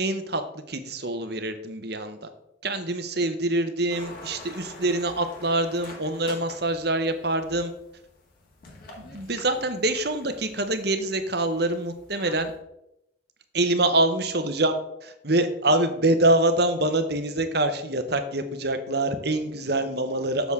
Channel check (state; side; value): normal; both; correlation -0.06